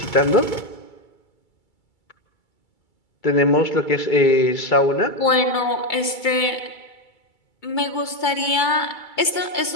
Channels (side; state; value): right; late; 2.3 ms